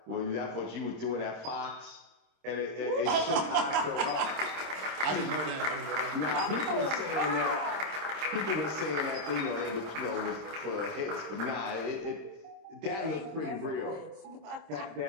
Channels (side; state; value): left; late; 26 ms